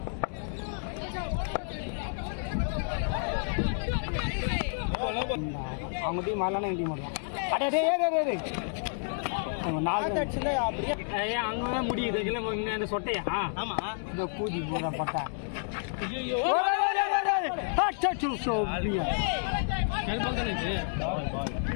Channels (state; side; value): silent; right; digital silence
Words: அவங்க டீம் வரலான்னா என் டீம் வரலாம். அவங்க 4 அடிச்சுல அப்படியே அங்கே முடியுது. இல்லை அந்த சொட்டையா? ஆமா, இந்த கூதி போடுற பட்டா.